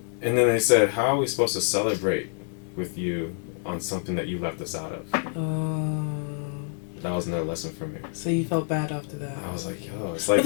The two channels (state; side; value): silent; right; digital silence